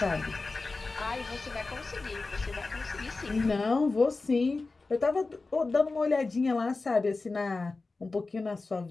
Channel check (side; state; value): right; quieter; 3.7 dB